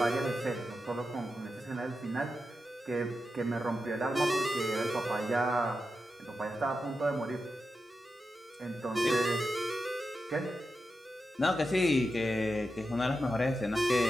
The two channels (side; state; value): both; normal; correlation 0.89